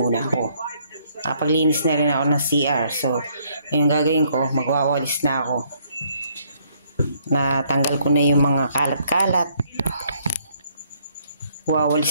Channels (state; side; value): inverted; both; correlation -0.67